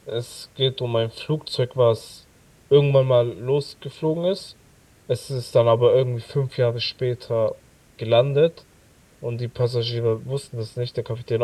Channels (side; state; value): both; identical; correlation 1.00